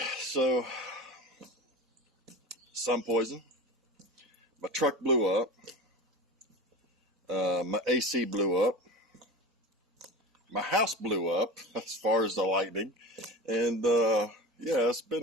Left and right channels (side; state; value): both; normal; correlation 0.30